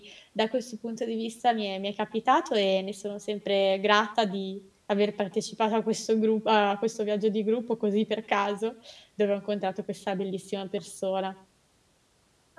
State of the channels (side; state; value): both; identical; correlation 1.00